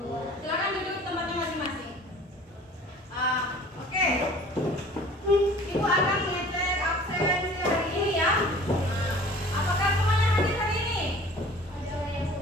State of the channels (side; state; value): both; normal; correlation 0.47